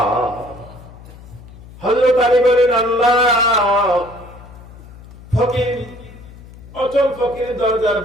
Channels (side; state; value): left; noise; hum, 19 dB below the sound